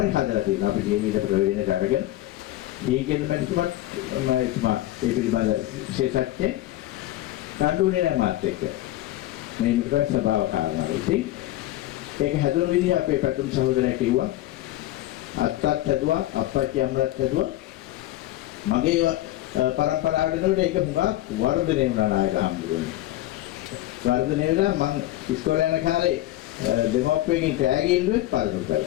හදලා තියෙනවා. අපි කියන ඊට ප්‍රවේදන කරගෙන දීගෙන මැතිතුමත් මම ඒ පිළිබඳ විශේෂඥ කඳුනේ නැහැ මාත් එක්ක. මේ මිත්‍ර ස්වභාව කාරණා. ඉතින් ඒක හැදුණු විදිහ අපේ පැතුම් සහෝදරයා කිව්වා. අත්තත් හැදුවා, අප්පච්චි අම්මලත් හැදුවා. මගේ පරම්පරාවට එනකොට ඒක හුඟක් වර්ධනය වුණා නායක හම්බුනේ. වර්ධනය වෙලා මං ඉස්කෝලේ යන කාලේ දෙමෝපියන්ගෙන් කෑගි ඉල්ලුවෙත් පාරකට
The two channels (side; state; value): right; quieter; 15.3 dB